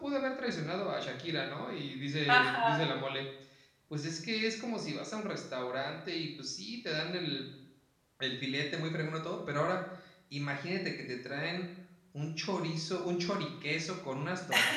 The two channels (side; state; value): both; identical; correlation 1.00